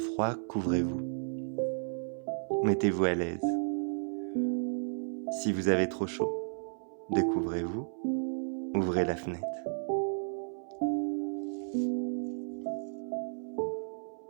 couvrez-vous. Mettez-vous à l'aise. Si vous avez trop chaud, découvrez-vous, ouvrez la fenêtre.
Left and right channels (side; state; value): left; silent; 56 dB below the other